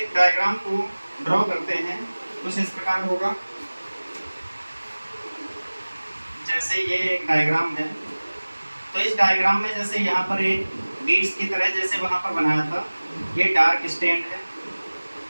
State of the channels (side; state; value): both; inverted; correlation -1.00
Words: डायग्राम को ड्रॉ करते हैं, कुछ इस प्रकार होगा। जैसे ये एक डायग्राम है, तो इस डायग्राम में जैसे यहाँ पर एक बीड्स की तरह जैसे वहाँ पर बनाया था, ये डार्क स्टैंड है